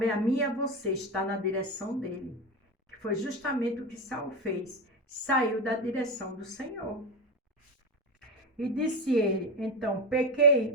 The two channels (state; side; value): normal; both; correlation 0.17